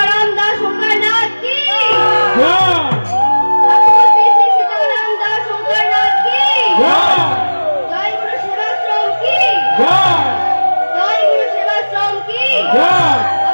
দাস শঙ্করনাথ কি জয়! ঠাকুর শ্রী শ্রী সীতারাম দাস শঙ্করনাথ কি জয়! জয় গুরু সেবাশ্রম কি জয়! জয় গুরু সেবাশ্রম কি জয়!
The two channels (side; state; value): both; inverted; correlation -1.00